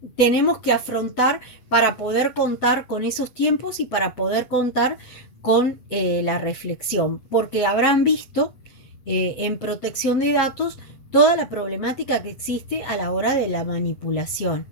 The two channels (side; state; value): right; late; 8.0 ms